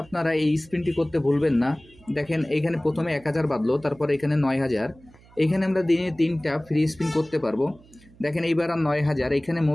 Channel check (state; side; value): noise; right; hum, 26 dB below the sound